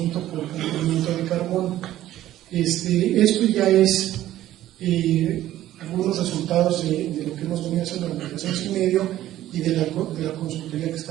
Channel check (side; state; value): left; quieter; 13.6 dB